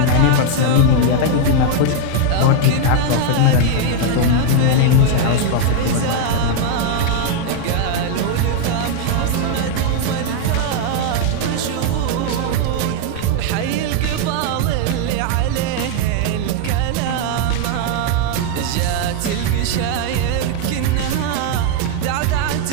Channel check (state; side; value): different; both; correlation 0.00